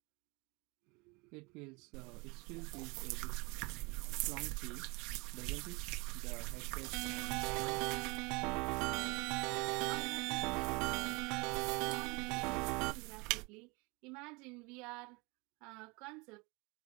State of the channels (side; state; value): left; quieter; 27.3 dB